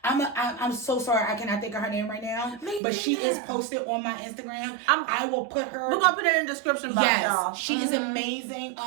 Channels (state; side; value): drops out; left; at 2.8 s